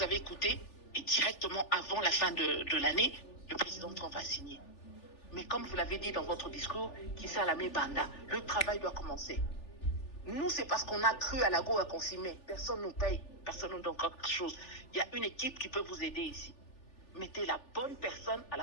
avez écouté est directement avant la fin de l'année, le président Trump a signé. Mais comme vous l'avez dit dans votre discours, Kissa Lamé Banda, le travail doit commencer. Nous, c'est parce qu'on a cru à la Goa qu'on s'y met. Personne ne nous paye, personne ne nous donne quelque chose. Il y a une équipe qui peut vous aider ici. Mettez la bonne personne à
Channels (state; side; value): late; right; 3.4 ms